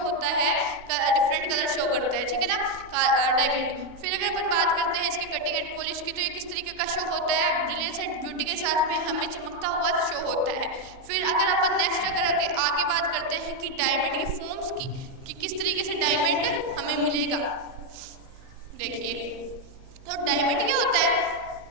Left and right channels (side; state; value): left; late; 38 ms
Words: होता है, डिफरेंट कलर शो करता है। ठीक है ना, डायमंड। फिर अगर अपन बात करते हैं इसकी कटिंग एंड पॉलिश की, तो ये किस तरीके का शो होता है, ब्रिलियंस एंड ब्यूटी के साथ में हमें चमकता हुआ शो होता है। फिर अगर अपन नेक्स्ट अगर आगे बात करते हैं कि डायमंड की फॉर्म्स की, कि किस तरीके से डायमंड हमें मिलेगा। देखिए, तो डायमंड क्या होता है,